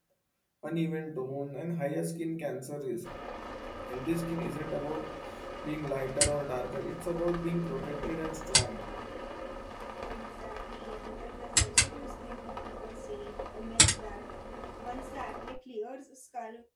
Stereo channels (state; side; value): identical; both; correlation 1.00